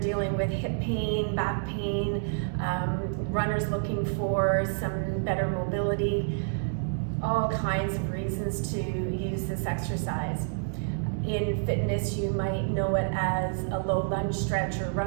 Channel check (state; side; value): silent; left; digital silence